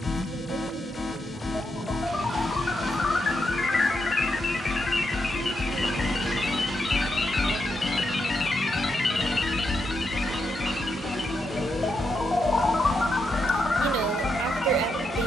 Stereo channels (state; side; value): normal; both; correlation 0.82